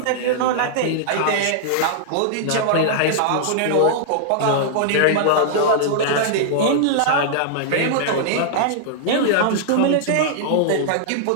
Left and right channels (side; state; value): both; different; correlation -0.01